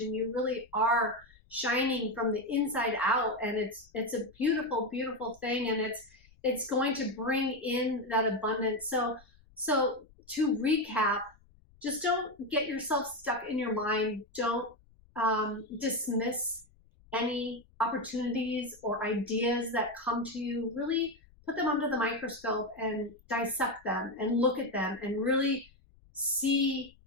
you really are shining from the inside out, and it's a beautiful, beautiful thing, and it's going to bring in that abundance. So to recap, just don't get yourself stuck in your mind. Don't dismiss any opportunities or ideas that come to you. Really put them under the microscope and dissect them and look at them and really see,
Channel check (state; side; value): noise; left; rumble, 28 dB below the sound